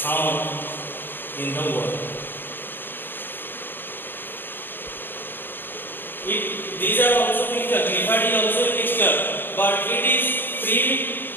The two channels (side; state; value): right; late; 0.098 ms